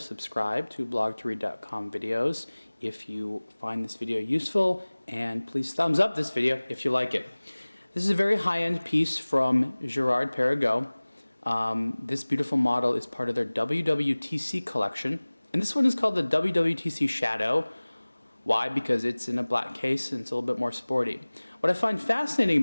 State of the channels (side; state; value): both; inverted; correlation -1.00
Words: subscribe to blog2read.com videos if you find this video useful, and please thumbs up this video if you like it. This is a very high-end piece from Girard-Perregaux. This beautiful model is part of their ww.tc collection, and this one is called the ww.tc Shadow. Why? Because it's in a black case and it's a little bit more sporty. What I find fascinating